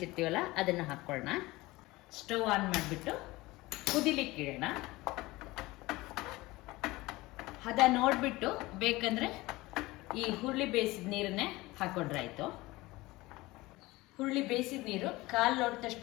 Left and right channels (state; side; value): quieter; right; 20.3 dB